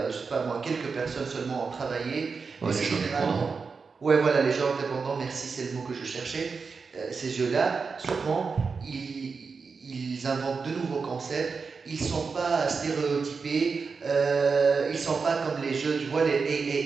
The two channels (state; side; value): quieter; left; 5.0 dB